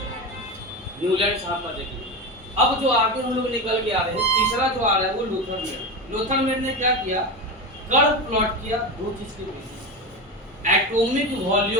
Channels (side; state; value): both; normal; correlation 0.20